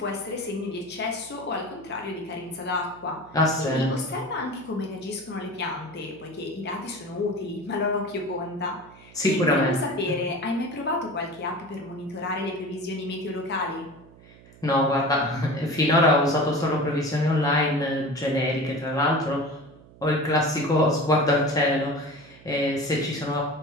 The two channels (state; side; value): noise; right; hum, 23 dB below the sound